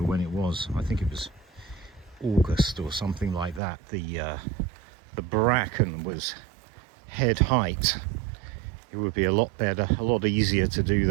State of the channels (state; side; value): drops out; left; at 3.6 s